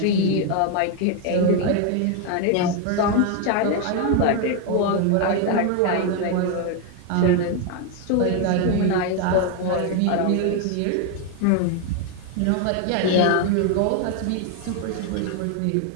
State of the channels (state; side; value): different; both; correlation 0.01